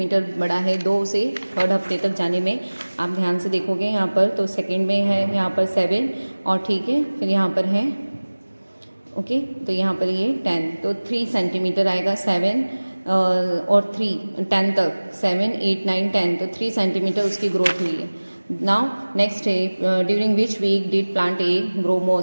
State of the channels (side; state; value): both; inverted; correlation -1.00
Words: बड़ा है 2 से 3rd हफ्ते तक जाने में. आप ध्यान से देखोगे यहाँ पर तो 2nd में है यहाँ पर 7 और ठीक है फिर यहाँ पर है ओके तो यहाँ पर ये 10 तो 3 सेंटीमीटर आएगा. 7 और 3 10 तक 7 8 9 10 तो 3 सेंटीमीटर उसकी ग्रोथ हुई है. नाउ नेक्स्ट है during which week did plant A grow